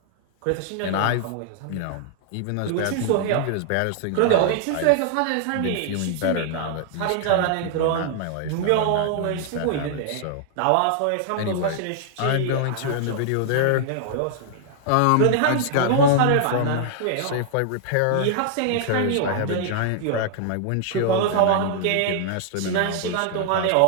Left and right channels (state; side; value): different; both; correlation -0.01